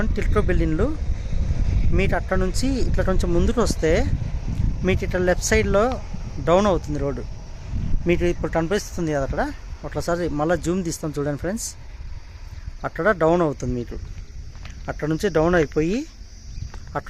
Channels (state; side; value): identical; both; correlation 1.00